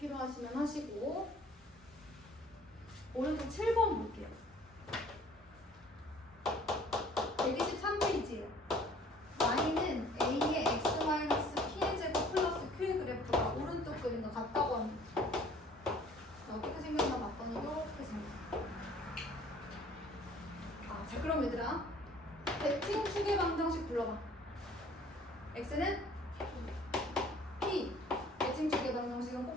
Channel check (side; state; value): both; normal; correlation 0.54